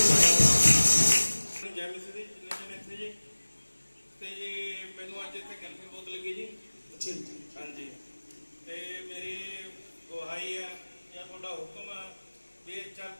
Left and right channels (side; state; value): both; inverted; correlation -1.00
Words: ਜੈ ਮਸੀਹ ਦੀ ਜਿੰਨੇ ਜਣੇ ਇੱਥੇ ਜੀ ਤੇ ਜੀ ਮੈਨੂੰ ਅੱਜ ਇੱਥੇ ਕੈਂਪਿੰਗ ਬਹੁਤ ਲੱਗੀ ਜੀ अच्छा जी, ਹਾਂਜੀ ਤੇ ਮੇਰੀ ਗੁਹਾਈ ਹੈ ਜਾਂ ਤੁਹਾਡਾ ਹੁਕਮ ਹੈ ਵੀ ਇਹ